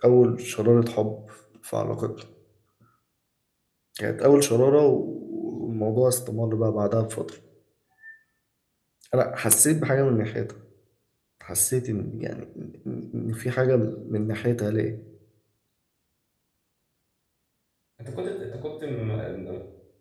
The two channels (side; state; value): both; identical; correlation 1.00